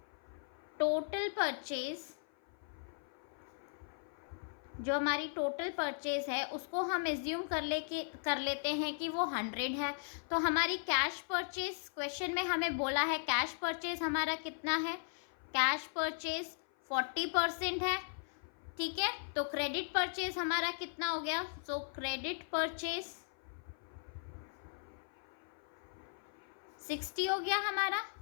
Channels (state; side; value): silent; right; 53 dB below the other